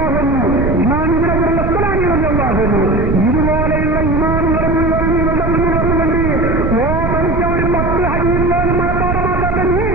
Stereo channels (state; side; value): noise; right; rumble, 1 dB below the sound